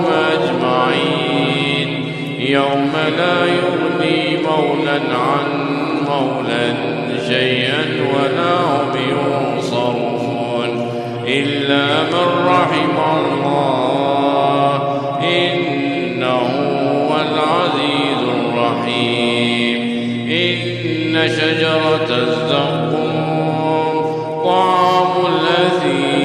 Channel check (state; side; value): identical; both; correlation 1.00